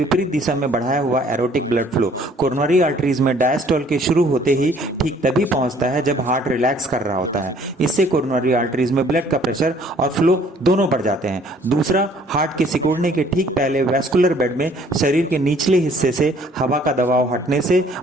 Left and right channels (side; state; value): both; normal; correlation 0.58